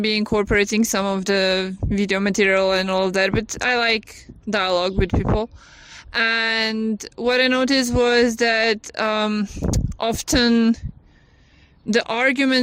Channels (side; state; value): both; identical; correlation 1.00